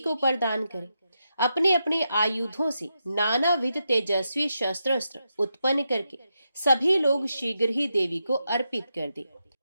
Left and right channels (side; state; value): both; inverted; correlation -0.85